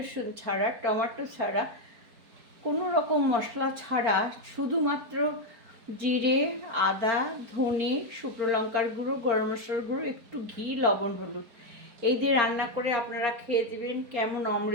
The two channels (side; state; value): left; late; 4.4 ms